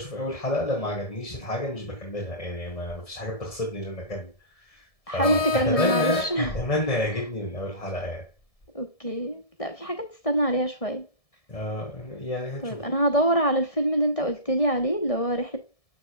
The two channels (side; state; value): right; late; 1.7 ms